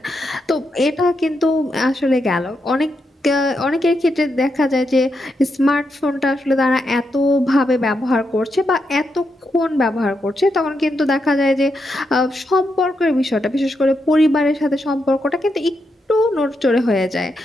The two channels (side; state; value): both; normal; correlation 0.83